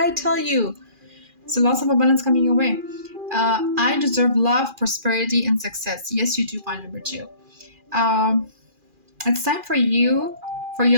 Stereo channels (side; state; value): left; late; 2.4 ms